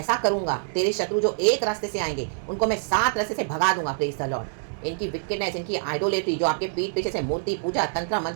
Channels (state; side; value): silent; left; 61 dB below the other